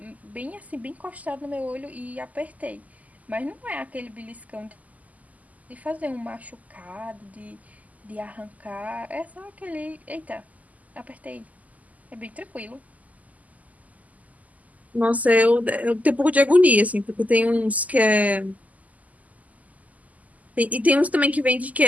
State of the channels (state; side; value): late; left; 0.076 ms